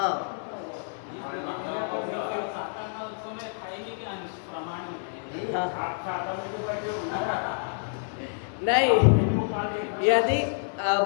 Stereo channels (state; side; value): silent; right; digital silence